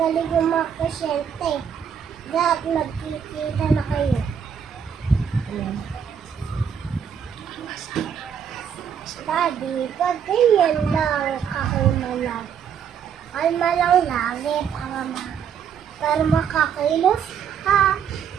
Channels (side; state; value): left; quieter; 7.8 dB